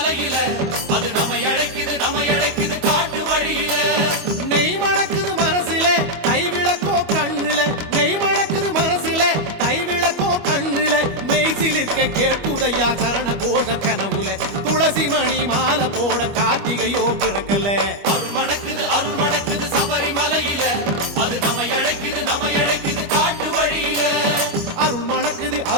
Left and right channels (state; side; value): late; left; 25 ms